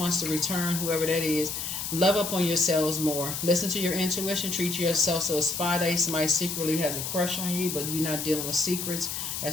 to return, whoever that is. Love up on yourselves more. Listen to your intuition. Treat yourself so a spy day. Somebody secretly has a crush on you, but you're not dealing with secrets.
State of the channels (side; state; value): left; noise; hiss, 4 dB below the sound